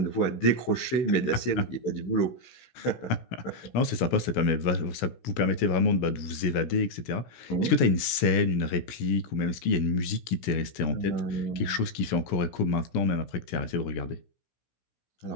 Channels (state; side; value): late; right; 16 ms